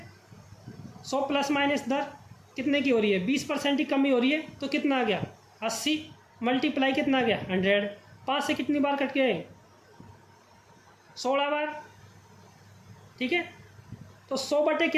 100 प्लस माइनस दर कितने की हो रही है, 20% की कमी हो रही है, तो कितना आ गया 80, मल्टीप्लाई कितना आ गया 100। 5 से कितनी बार कट गए, 16 बार, ठीक है। तो 100 बटे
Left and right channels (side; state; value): both; identical; correlation 1.00